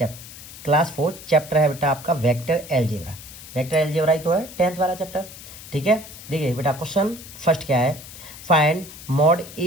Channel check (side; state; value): left; noise; hiss, 15 dB below the sound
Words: class 4 chapter है बेटा आपका वेक्टर एलजेब्रा। वेक्टर एलजेब्रा ही तो है 10th वाला चैप्टर। ठीक है, देखिए बेटा क्वेश्चन फर्स्ट क्या है, find mod